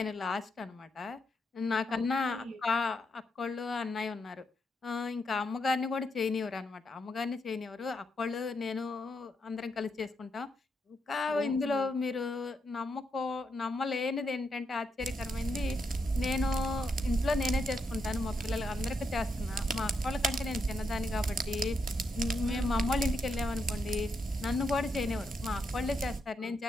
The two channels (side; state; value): both; normal; correlation 0.81